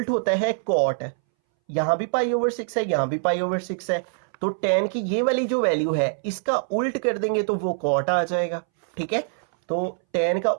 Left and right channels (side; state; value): left; silent; 62 dB below the other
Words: होता है cot, यहाँ भी π/6 है, यहाँ भी π/6 है, तो 10 की ये वाली जो वैल्यू है इसका उल्ट कर देंगे तो वो cot आ जाएगा, ठीक है। तो 10 का